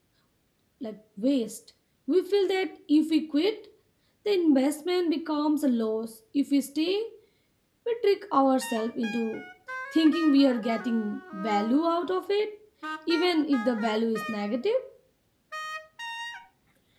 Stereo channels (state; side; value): identical; both; correlation 1.00